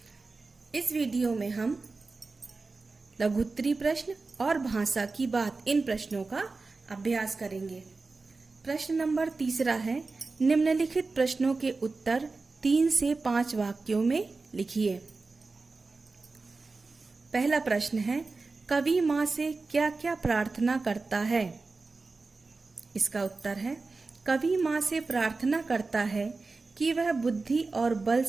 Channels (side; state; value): left; quieter; 3.8 dB